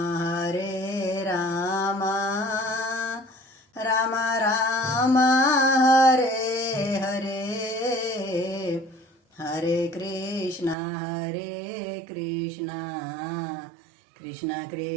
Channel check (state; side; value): drops out; left; at 10.8 s